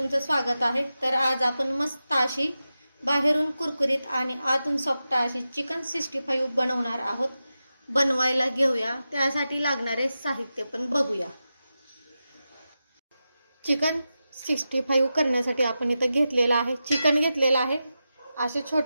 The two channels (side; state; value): both; inverted; correlation -0.92